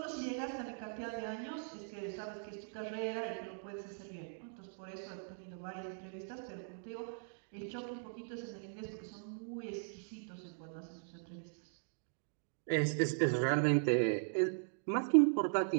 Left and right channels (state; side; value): silent; left; digital silence